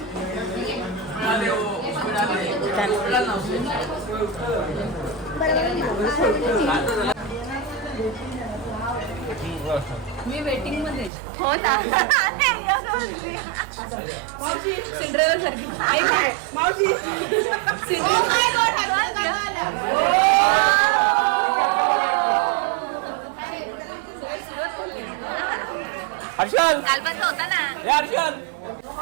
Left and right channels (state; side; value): drops out; left; at 11.1 s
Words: मी वेटिंग मध्ये. हो ना. मावशी सिंड्रेला सारखी. आई काय मावशी हर्षल काल पण होता ना.